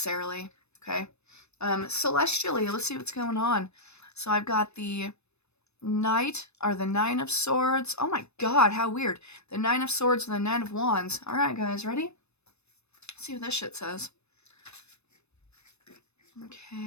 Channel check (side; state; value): right; late; 0.81 ms